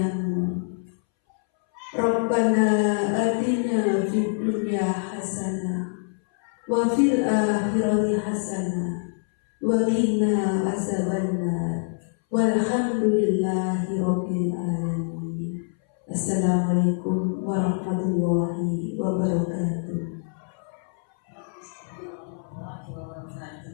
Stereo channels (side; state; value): right; silent; 62 dB below the other